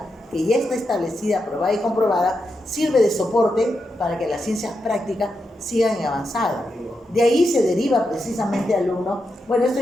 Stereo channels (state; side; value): normal; both; correlation 0.86